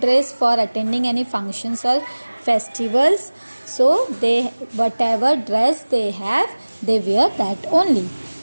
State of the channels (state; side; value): inverted; both; correlation -1.00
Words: for attending any functions or festivals. So they whatever dress they have, they wear that only.